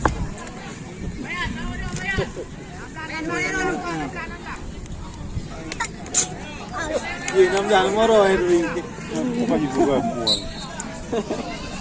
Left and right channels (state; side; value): identical; both; correlation 1.00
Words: Jangan moro itu. Bukan juga mual.